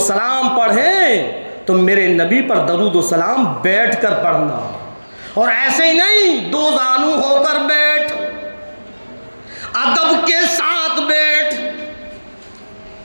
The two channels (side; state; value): both; inverted; correlation -1.00